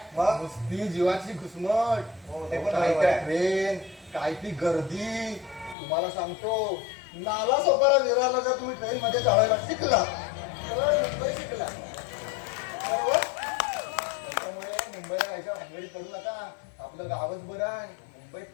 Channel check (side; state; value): right; drops out; at 5.8 s